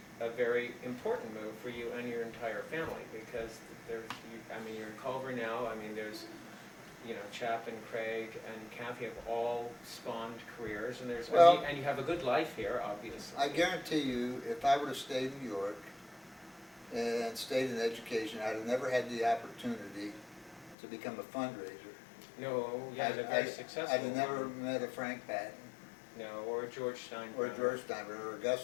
a very important move for you and your entire family, because you're in Culver now. I mean, there's, Chap and Craig and Kathy have all spawned careers, and Well- and you have a good life here, obviously. I guarantee you, if I would have stayed in New York and stayed in education, I'd have never had the opportunity to become a fundraiser. No, you had a very successful. I'd have never met a Frank Patton, No, or George Steinbrenner. or George Steinbrenner, or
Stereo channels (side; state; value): right; drops out; at 20.8 s